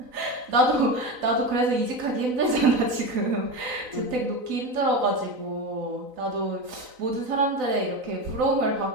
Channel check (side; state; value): left; late; 3.9 ms